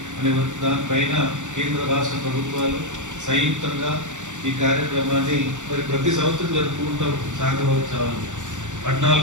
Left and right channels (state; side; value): late; left; 0.85 ms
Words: అనే దానిపైన కేంద్ర రాష్ట్ర ప్రభుత్వాలు సంయుక్తంగా ఈ కార్యక్రమాన్ని మరి ప్రతి సంవత్సరం జరుపుకుంటాం సహకారోత్సవాలు